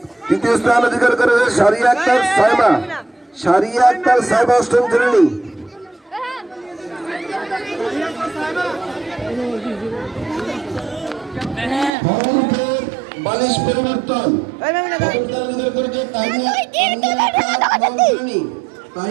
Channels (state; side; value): drops out; left; at 11.9 s